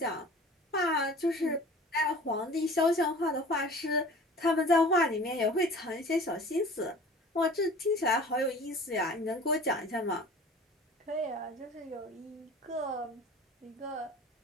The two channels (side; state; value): both; normal; correlation 0.43